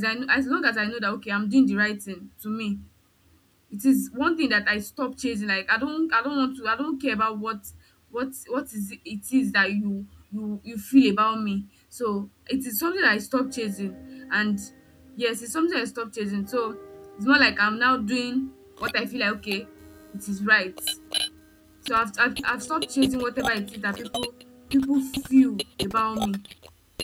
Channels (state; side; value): identical; both; correlation 1.00